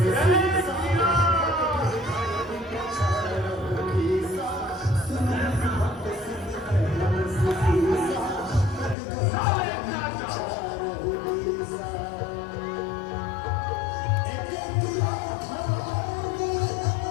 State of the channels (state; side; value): drops out; right; at 9.0 s